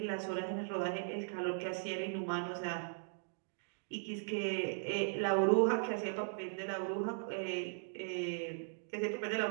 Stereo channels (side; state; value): left; silent; digital silence